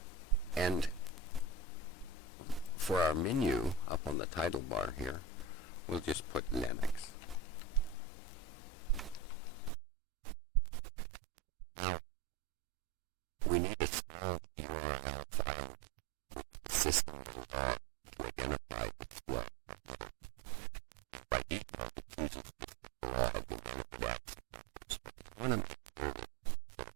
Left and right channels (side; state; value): left; drops out; at 9.7 s